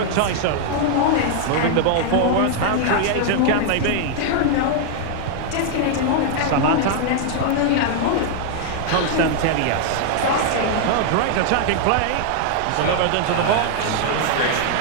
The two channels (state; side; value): different; both; correlation 0.00